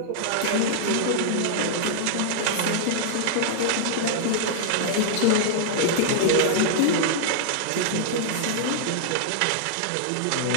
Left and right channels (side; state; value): both; different; correlation -0.01